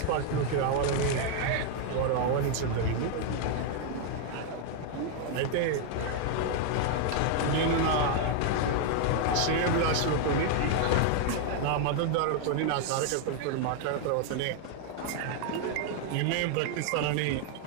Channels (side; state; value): both; different; correlation 0.00